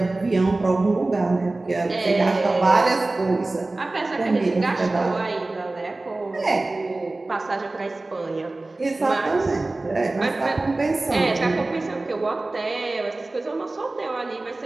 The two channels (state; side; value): quieter; left; 3.0 dB